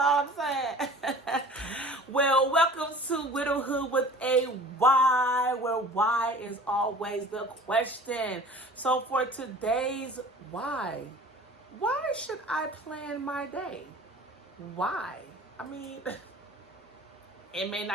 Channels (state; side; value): normal; both; correlation 0.44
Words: what I'm saying? Well, welcome to Wydowhood with a why, where why is always the question. So for today's why should I plan my day? Why? I mean, it may